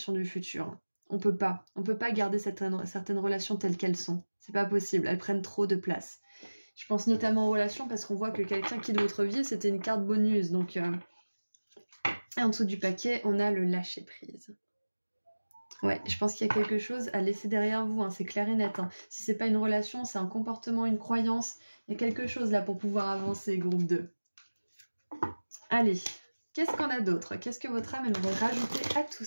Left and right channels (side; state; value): both; inverted; correlation -1.00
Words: du futur. On peut pas garder certaines relations telles qu'elles sont. C'est pas possible, elles prennent trop de place. Je pense notamment aux relations parce qu'on voit que quelqu'un quitte votre vie, c'était une carte bonus. Donc, et en dessous du paquet, on a le lâcher prise. Ouais, je pense qu'il y a quelque chose à laisser derrière vous, hein, c'est clair et net. Hein. Si c'est pas une relation, c'est un comportement, une croyance. Il y a quelque chose là pour pouvoir avancer, groupe 2. Allez, qu'est-ce qu'on a d'autre? Qu'est-ce que votre âme aimerait rajouter à tout